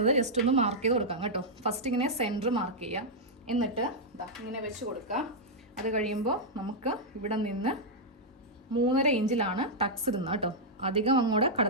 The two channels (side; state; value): both; normal; correlation -0.06